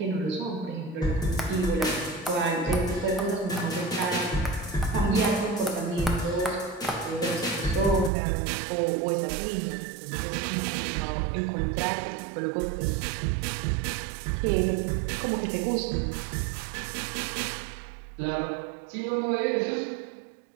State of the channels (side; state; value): left; drops out; at 8.1 s